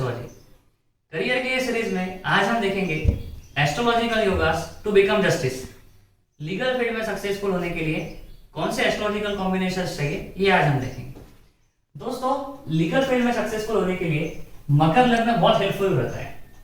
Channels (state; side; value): identical; both; correlation 1.00